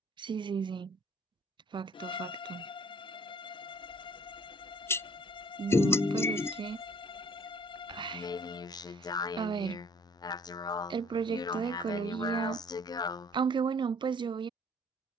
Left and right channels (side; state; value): both; normal; correlation 0.56